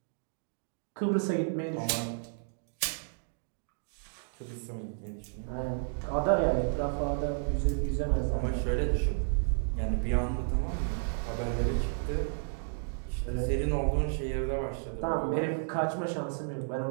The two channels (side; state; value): left; silent; digital silence